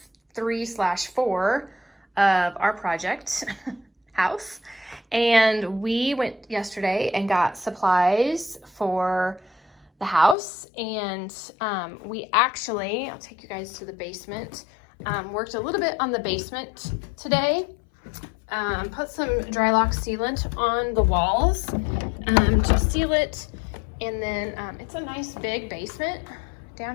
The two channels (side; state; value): right; drops out; at 10.4 s